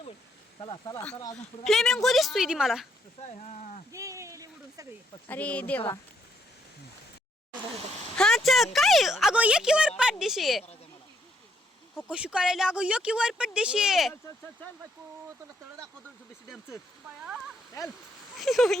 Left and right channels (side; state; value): both; normal; correlation 0.72